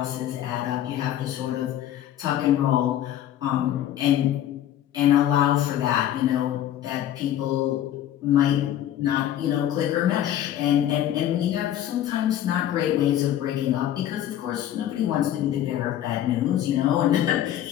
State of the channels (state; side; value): quieter; right; 11.7 dB